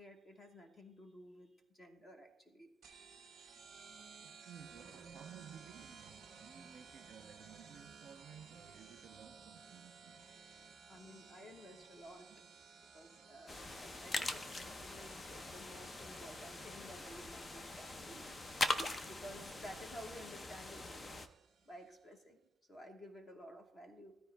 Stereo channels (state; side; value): normal; both; correlation 0.85